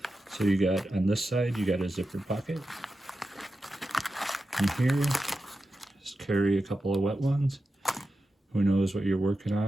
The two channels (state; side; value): normal; both; correlation 0.91